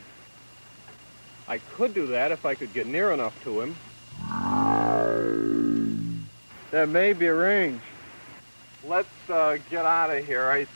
I could do that if I could get near enough to him. That may be arranged. Let's get out of here. I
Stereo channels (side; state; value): both; inverted; correlation -1.00